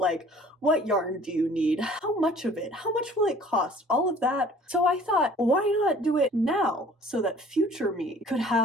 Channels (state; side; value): normal; both; correlation 0.51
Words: what yarn do you need? How much of it? How much will it cost? All of that. So I thought, why not do it now so that future me could